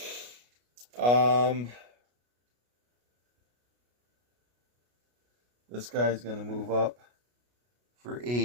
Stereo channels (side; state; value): left; late; 33 ms